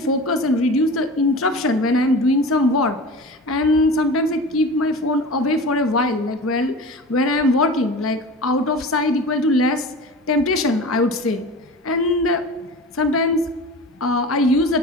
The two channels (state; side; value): normal; both; correlation 0.35